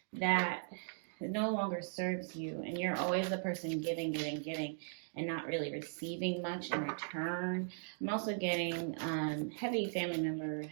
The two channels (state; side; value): silent; left; digital silence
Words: that no longer serves you, and you're always the person giving, giving, giving, and not really receiving much in return. I'm also getting heavy family member,